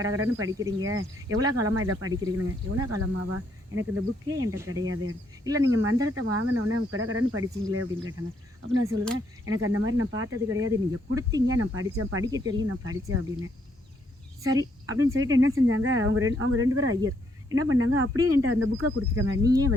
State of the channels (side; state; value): both; normal; correlation 0.73